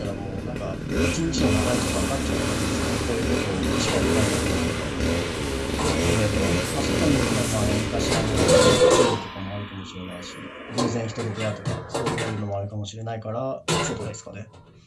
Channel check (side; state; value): both; identical; correlation 1.00